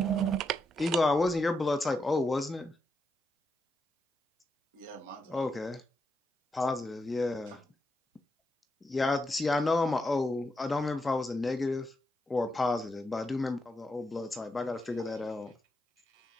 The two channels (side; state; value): both; normal; correlation 0.84